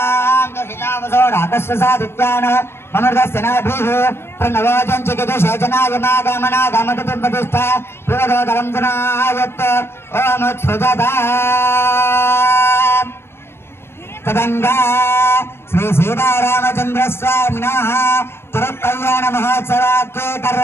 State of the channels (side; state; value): right; late; 0.12 ms